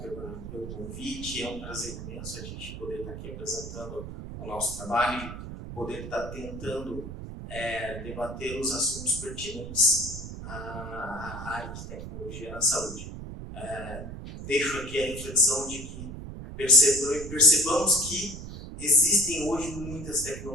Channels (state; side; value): noise; right; rumble, 9 dB below the sound